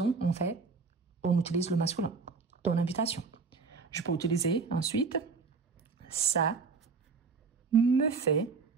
on utilise le masculin. Ton invitation. Je peux utiliser ensuite ça me fait.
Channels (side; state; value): left; quieter; 4.8 dB